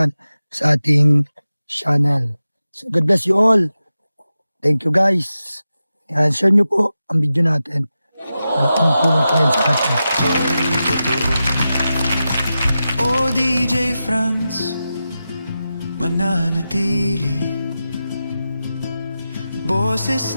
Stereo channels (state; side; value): inverted; both; correlation -0.92